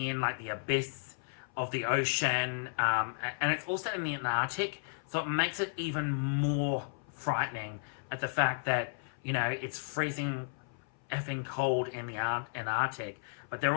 in, like the abyss of the ocean, and it's also in the Antarctic, so it makes it even more frightening at the fact that, it's freezing effing cold in the Antarctic, but they're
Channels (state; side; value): silent; right; 55 dB below the other